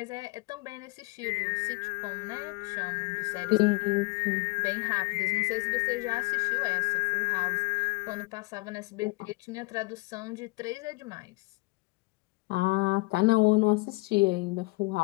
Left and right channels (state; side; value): quieter; right; 25.7 dB